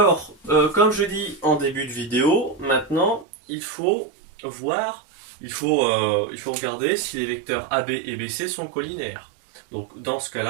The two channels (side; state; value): left; drops out; at 3.2 s